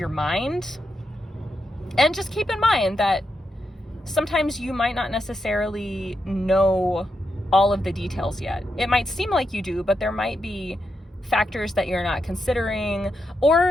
mind. And just keep in mind that sometimes you might not necessarily know all of the details yet. It might seem like you do, but there might be factors that you're not considering.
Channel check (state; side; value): normal; both; correlation 0.85